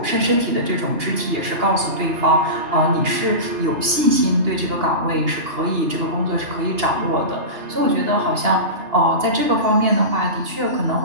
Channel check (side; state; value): left; late; 2.8 ms